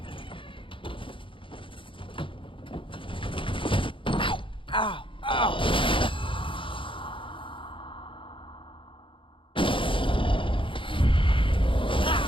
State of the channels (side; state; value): right; late; 0.25 ms